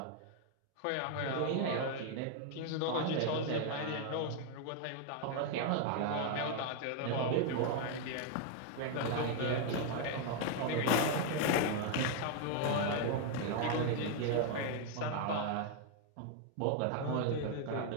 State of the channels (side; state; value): both; different; correlation 0.00